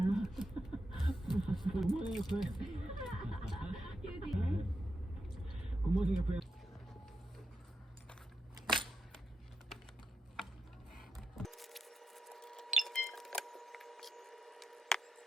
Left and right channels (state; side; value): normal; both; correlation 0.86